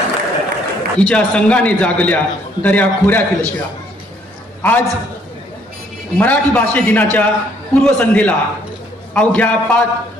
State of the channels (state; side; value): normal; both; correlation 0.65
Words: हिच्या संघाने जागल्या दर्या खोऱ्यातील शिळा. आज मराठी भाषे दिनाच्या पूर्वसंध्येला